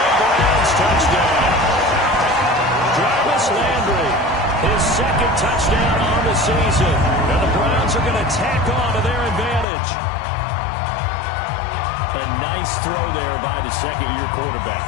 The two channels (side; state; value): right; drops out; at 9.7 s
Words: Browns touchdown. Jarvis Landry, his second touchdown on the season. And the Browns are going to tack on to their advantage. A nice throw there by the second-year quarterback.